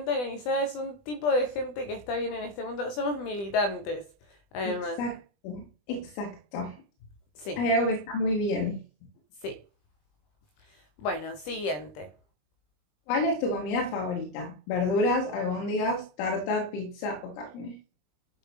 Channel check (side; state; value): right; late; 20 ms